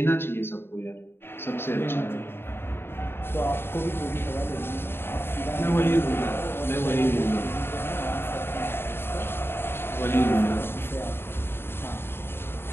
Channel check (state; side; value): late; right; 0.11 ms